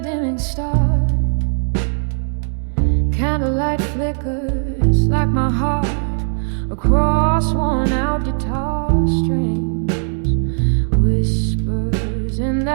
dimming stars, candlelight flickers like my heart across worn-out guitar strings. Whispers in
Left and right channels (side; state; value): left; silent; 58 dB below the other